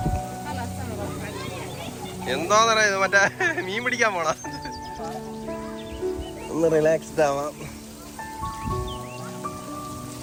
എന്താന്നറിയാ ഇത്, മറ്റേ മീൻ പിടിക്കാൻ പോണ. ഒന്ന് റിലാക്സ്ഡ് ആവാം.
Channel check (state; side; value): identical; both; correlation 1.00